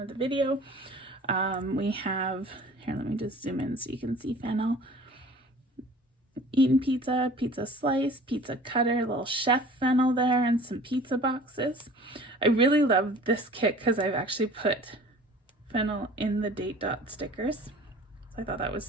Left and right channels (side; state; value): both; normal; correlation 0.45